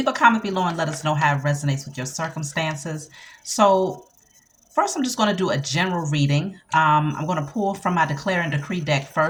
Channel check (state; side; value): identical; both; correlation 1.00